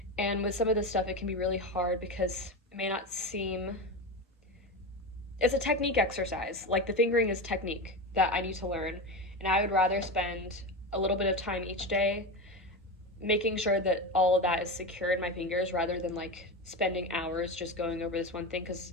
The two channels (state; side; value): normal; both; correlation 0.20